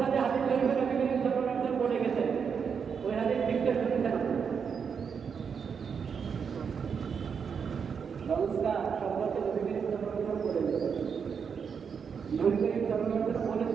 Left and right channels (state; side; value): quieter; left; 6.5 dB